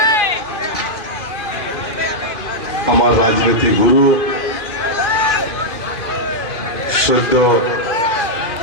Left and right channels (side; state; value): right; late; 2.5 ms